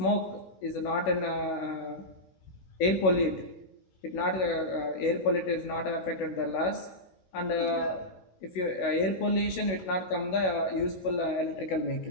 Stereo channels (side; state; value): right; late; 16 ms